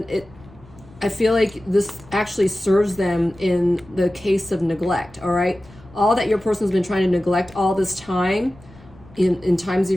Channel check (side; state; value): left; noise; rumble, 23 dB below the sound